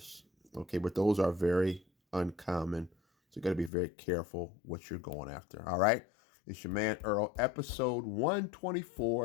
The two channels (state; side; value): drops out; right; at 3.7 s